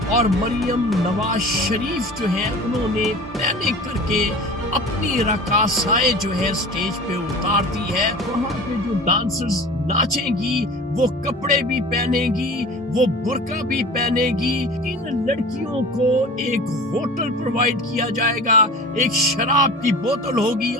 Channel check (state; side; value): normal; both; correlation 0.38